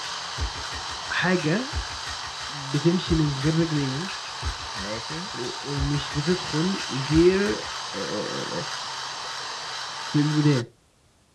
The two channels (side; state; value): both; identical; correlation 1.00